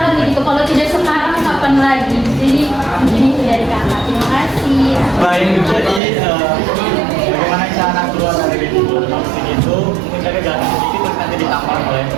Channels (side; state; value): left; drops out; at 6.0 s